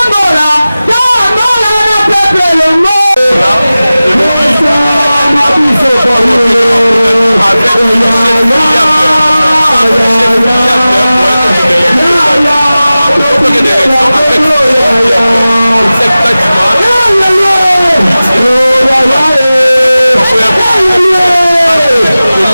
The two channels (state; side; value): inverted; both; correlation -0.97